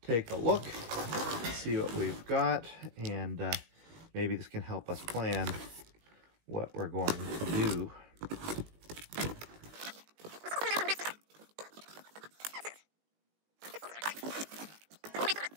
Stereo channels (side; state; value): left; late; 19 ms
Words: take a look, see what we've got, and maybe this can help us plan what we're going to do.